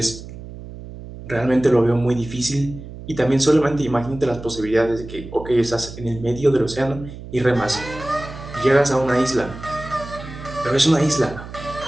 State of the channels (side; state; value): right; noise; hum, 13 dB below the sound